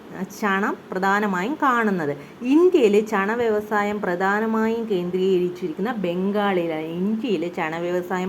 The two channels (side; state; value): both; identical; correlation 1.00